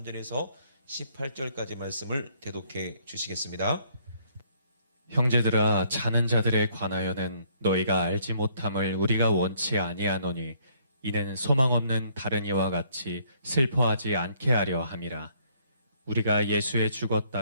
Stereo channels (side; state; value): both; inverted; correlation -0.66